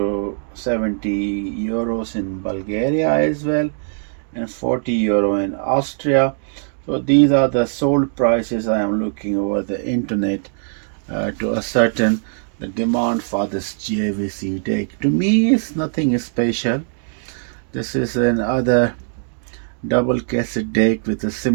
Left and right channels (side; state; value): left; silent; digital silence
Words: 70 euros in Bulgaria as well, and 40 euro in Austria. So these are the sold prices I am looking over the internet to ascertain the demand for this JVC deck. To me, it's nothing special. This is another double cassette deck with a